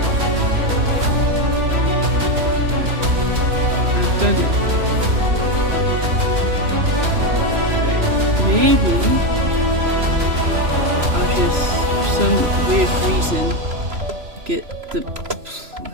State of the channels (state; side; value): late; left; 3.0 ms